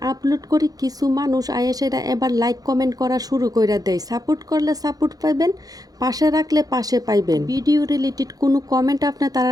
আপলোড করি কিছু মানুষ আয়েসেরা এবার লাইক কমেন্ট করা শুরু করে দেয়। সাপোর্ট করলে সাপোর্ট পাইবেন, পাশে রাখলে পাশে পাইবেন। ভিডিও রিলেটেড কোনো কমেন্ট আপনি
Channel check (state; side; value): late; left; 0.18 ms